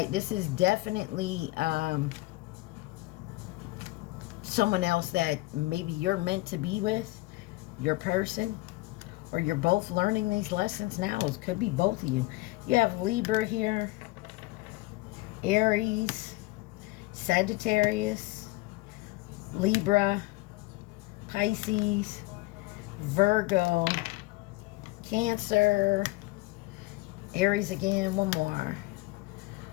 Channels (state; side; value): quieter; right; 20.7 dB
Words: this is definitely someone else that maybe you're meant to be with. Your person, or you're both learning these lessons now. It could be both of you. You have Libra here, Aries, Sagittarius, Libra, Pisces, Virgo, Cancer, Aries again, one more,